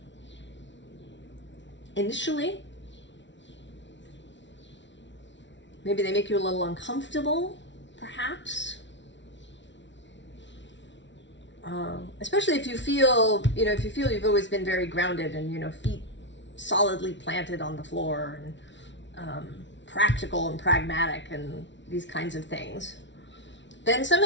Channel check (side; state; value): right; late; 0.53 ms